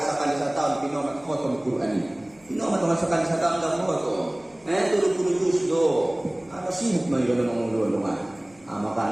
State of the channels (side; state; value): left; noise; hum, 30 dB below the sound